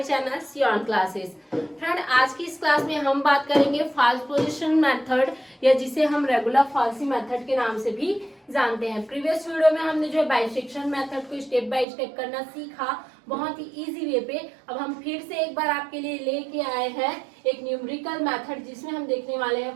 channel Sion classes. Friend, आज की इस class में हम बात करेंगे फॉल्स पोजीशन मेथड, या जिसे हम रेगुलर फॉल्सी मेथड के नाम से भी जानते हैं। प्रीवियस वीडियो में हमने जो बाइसेक्शन मेथड को स्टेप बाय स्टेप करना सीखा, बहुत ही इजी वे पे। अब हम फिर से एक बार आपके लिए लेके आए हैं एक न्यूमेरिकल मेथड, जिसमें हम देखने वाले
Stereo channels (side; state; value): left; drops out; at 11.9 s